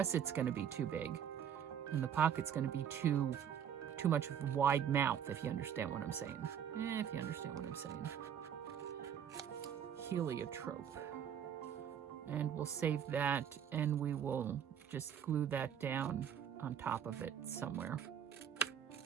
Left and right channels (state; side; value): quieter; left; 8.7 dB